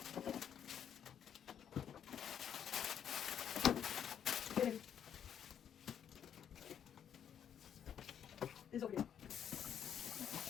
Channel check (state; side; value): quieter; right; 8.8 dB